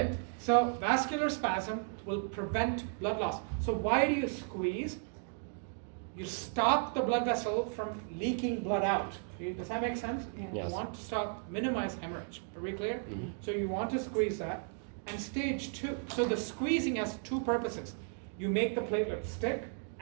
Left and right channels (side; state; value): left; silent; 55 dB below the other